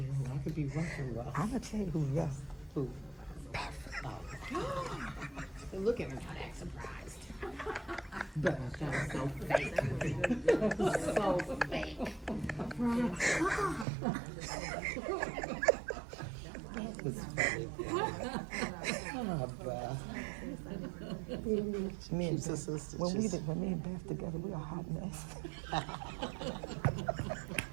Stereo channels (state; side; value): drops out; left; at 13.9 s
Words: I could be rough and rough. I'm gonna tell you who's rough. Who? Oh. Look at her, not that surprised. But that was so fake. So fake. That was funny. Me and She's a sister. when me and Beth together, we a hot mess.